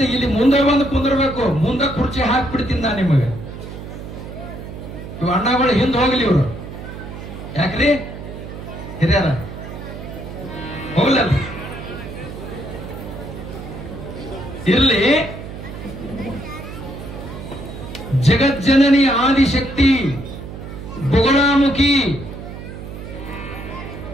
ಇಲ್ಲಿ ಮುಂದೆ ಬಂದು ಕುಂದಿರ್ಬೇಕು. ಮುಂದೆ ಕುರ್ಚಿ ಹಾಕ್ಬಿಡ್ತೀನಿ ನಾ ನಿಮಗೆ. ಇವ್ ಅಣ್ಣಗಳು ಹಿಂದೆ ಹೋಗ್ಲಿ. ಇವರು ಯಾಕ್ರಿ ಹಿರಿಯರ ಹೋಗ್ಲಲ್ಲ. ಇರ್ಲಿ. ಜಗಜ್ಜನನಿ ಆದಿಶಕ್ತಿ ಬೊಗಳಾಮುಖಿ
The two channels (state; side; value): noise; right; hum, 11 dB below the sound